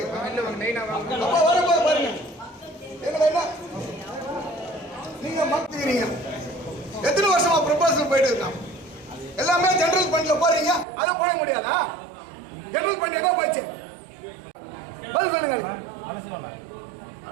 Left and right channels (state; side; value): drops out; left; at 10.9 s